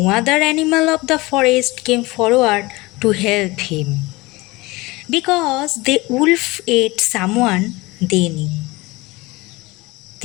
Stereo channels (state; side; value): quieter; right; 22.1 dB